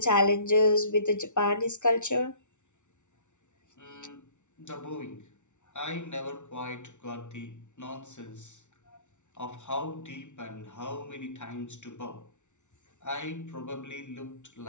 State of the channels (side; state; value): right; late; 0.84 ms